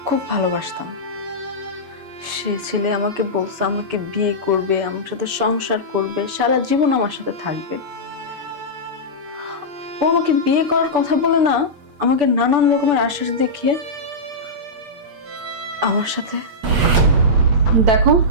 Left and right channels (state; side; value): late; left; 8.3 ms